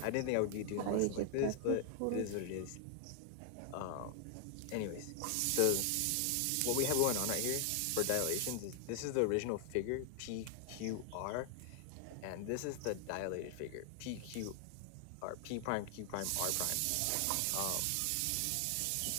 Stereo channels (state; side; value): different; both; correlation 0.00